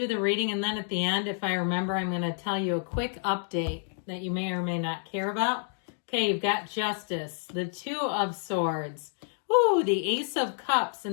the reading, and then at the end, if I remember, I'm going to tell you a quick update that you may or may not care about. Okay, you've got Justice, the Two of Swords, the Ace of Cups in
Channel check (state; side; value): silent; right; digital silence